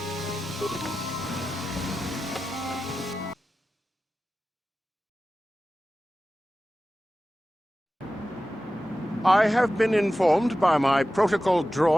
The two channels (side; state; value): both; normal; correlation 0.94